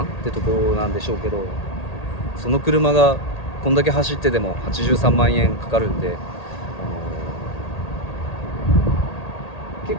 ってところなんでしょうけど、その車がこんだけ走ってでも83万円かかるんで、結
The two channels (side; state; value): right; late; 1.8 ms